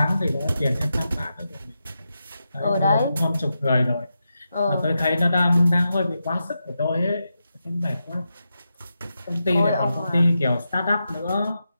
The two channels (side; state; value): both; inverted; correlation -0.88